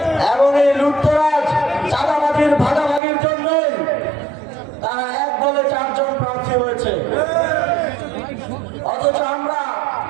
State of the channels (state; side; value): drops out; left; at 3.0 s